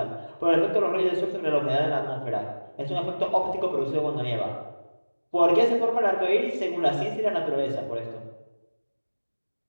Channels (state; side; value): inverted; both; correlation -1.00